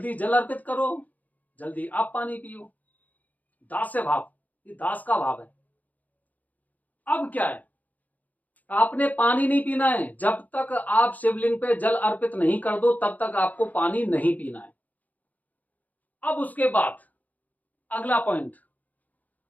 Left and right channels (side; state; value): right; late; 0.079 ms